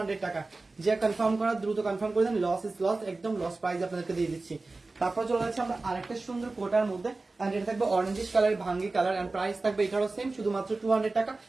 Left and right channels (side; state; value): left; quieter; 3.4 dB